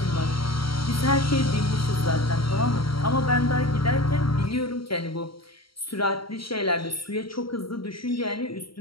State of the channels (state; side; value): late; right; 0.74 ms